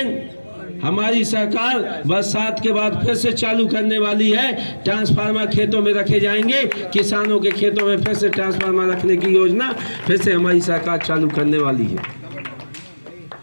हमारी सरकार बरसात के बाद फिर से चालू करने वाली है। ट्रांसफार्मर खेतों में रखे जाएंगे, किसानों के खेतों में फिर से ट्रांसफार्मर रखने की योजना फिर से हमारी सरकार चालू करने वाली है।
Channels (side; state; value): both; inverted; correlation -1.00